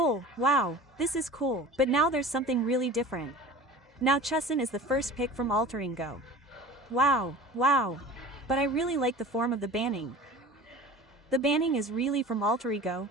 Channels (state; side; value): normal; both; correlation 0.39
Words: wow, this is cool. But now there's something really different. Now Chusin is the first pick from alterego. Wow, wow. But I really like the form of the banning. The banning is really from alterego,